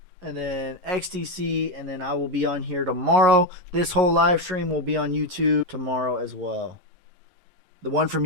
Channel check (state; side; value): late; left; 21 ms